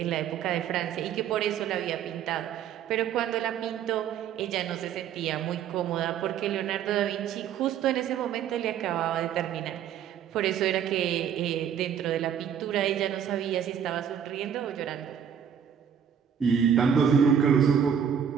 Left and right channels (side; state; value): left; quieter; 8.5 dB